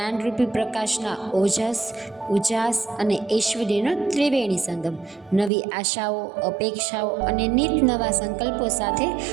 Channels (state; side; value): drops out; left; at 5.5 s